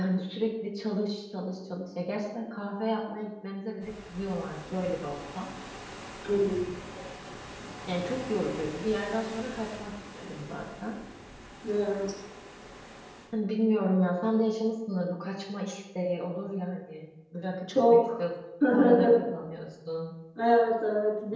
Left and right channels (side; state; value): both; identical; correlation 1.00